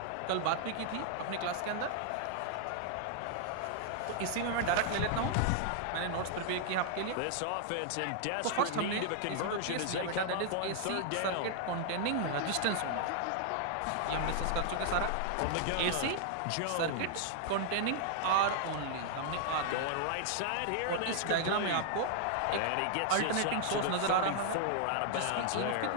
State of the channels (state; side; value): different; both; correlation -0.01